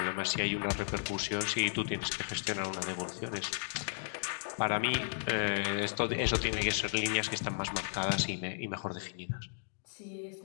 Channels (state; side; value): silent; right; digital silence